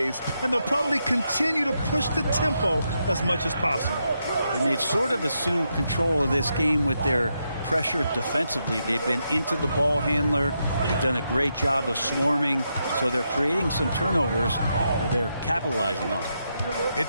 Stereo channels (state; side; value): inverted; both; correlation -0.82